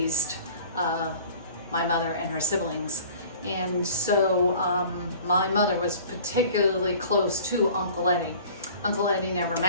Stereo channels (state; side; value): inverted; both; correlation -0.47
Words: my mother and her siblings. And so my mother was particularly close to Uncle Eddie. Uncle Eddie never